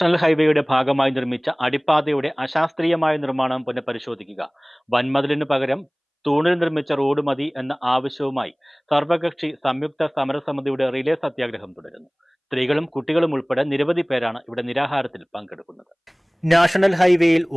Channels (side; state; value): both; identical; correlation 1.00